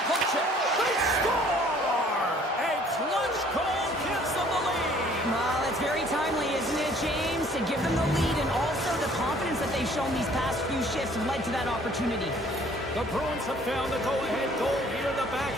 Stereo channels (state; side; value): normal; both; correlation 0.57